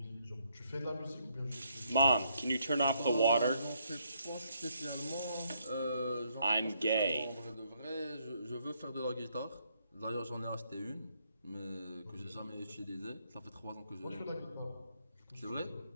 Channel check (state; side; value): inverted; both; correlation -0.73